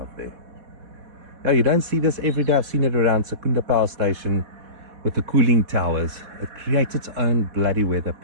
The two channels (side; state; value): left; late; 4.1 ms